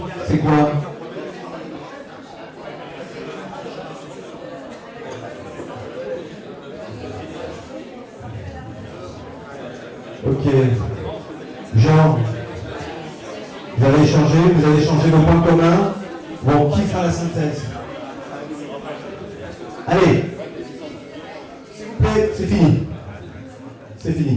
c'est quoi? Ok. Jean, vous avez échangé vos points communs. Bon, qui fera la synthèse? Allez. S'il vous plaît, c'est fini. C'est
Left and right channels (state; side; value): identical; both; correlation 1.00